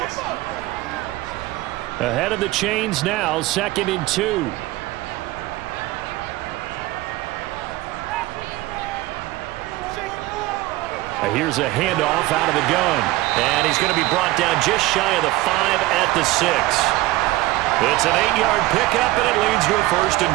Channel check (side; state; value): left; quieter; 18.2 dB